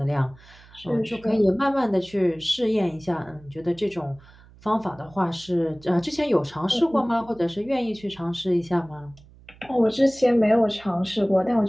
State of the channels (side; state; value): right; noise; hum, 24 dB below the sound